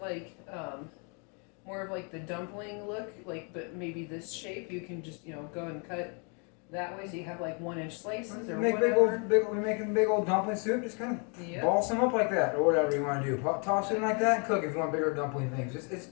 more of like the dumpling look, but maybe this shape, you can just go and cut that way so you have like 1-inch slices or Make whatever. we're making big old dumpling soup. Just kind of ball some up like that, or whatever you want to do. Toss it in like that and cook if you want bigger dumpling things. It's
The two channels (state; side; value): quieter; right; 36.6 dB